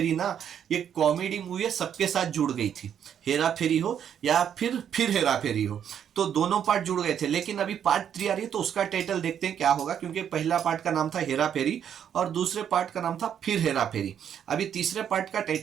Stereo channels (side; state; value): left; quieter; 8.9 dB